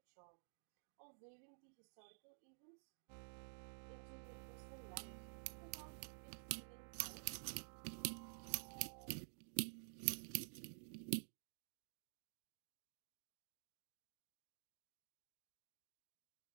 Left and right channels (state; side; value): silent; left; digital silence